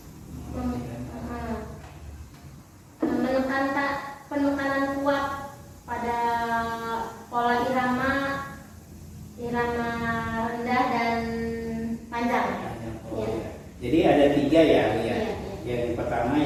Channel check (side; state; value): both; identical; correlation 1.00